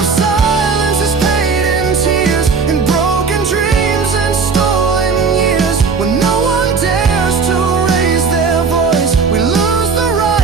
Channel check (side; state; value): left; quieter; 5.1 dB